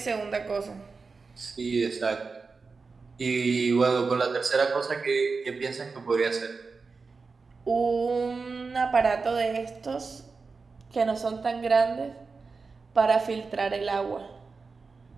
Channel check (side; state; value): left; quieter; 4.5 dB